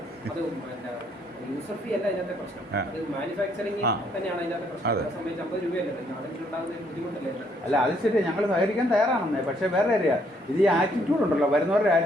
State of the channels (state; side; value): normal; both; correlation 0.69